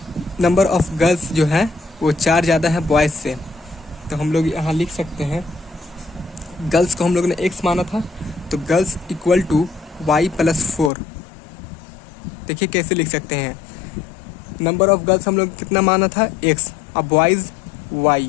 गर्ल्स जो है वो 4 ज़्यादा है बॉयज़ से। तो हम लोग यहाँ लिख सकते हैं, गर्ल्स को हम लोग ने एक्स माना था, तो girls equal to Y plus 4। देखिए कैसे लिख सकते हैं, नंबर ऑफ गर्ल्स हम लोग कितना माना था x और बॉयज़ y।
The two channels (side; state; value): right; drops out; at 10.9 s